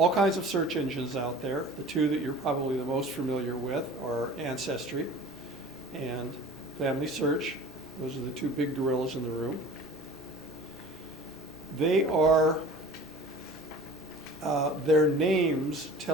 kinds of search engines out there. The two that you're probably the most familiar with are Ancestry and Familysearch. Those are the two big gorillas in the room. They are, their names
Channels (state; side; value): normal; both; correlation 0.42